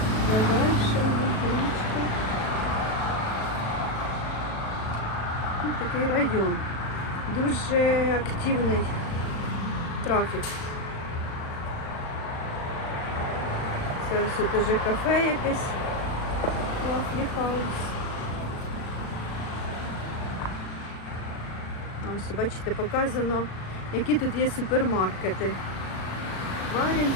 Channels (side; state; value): right; late; 37 ms